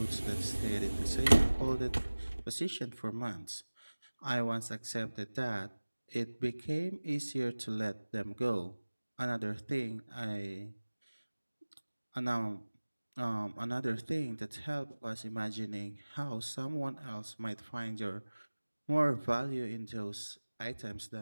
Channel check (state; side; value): inverted; both; correlation -1.00